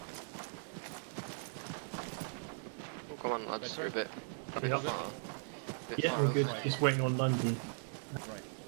Oh, come on, lads, you're a bit far. Yeah, Far we're over. good. Just waiting on London. Right.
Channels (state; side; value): silent; left; digital silence